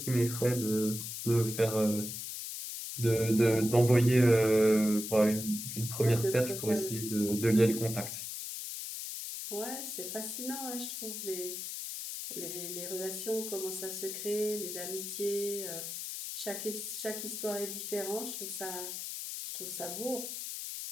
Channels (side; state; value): left; noise; hiss, 6 dB below the sound